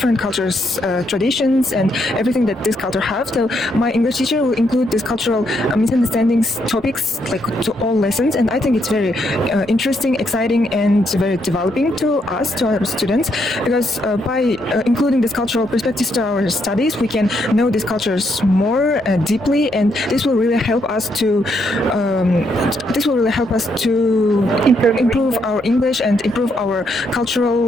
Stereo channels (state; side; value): normal; both; correlation 0.76